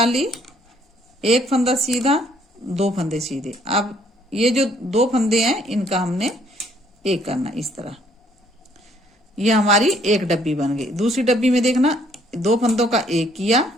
एक फंदा सीधा, दो फंदे सीधे। अब ये जो दो फंदे हैं इनका हमने एक करना इस तरह। ये हमारी एक डब्बी बन गई। दूसरी डब्बी में देखना, दो फंदों का एक किया,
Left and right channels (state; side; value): normal; both; correlation 0.64